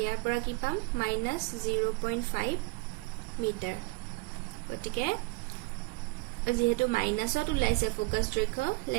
ইয়াৰ পৰা কি পাম -0.5 মিটাৰ গতিকে যেহেতু মাইনাসত ওলাইছে ফোকাস দৈৰ্ঘ্য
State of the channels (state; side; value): quieter; left; 25.8 dB